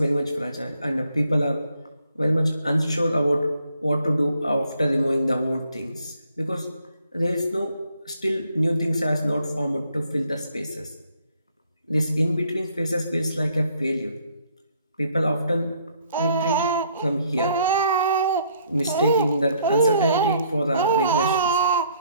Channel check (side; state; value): both; inverted; correlation -0.66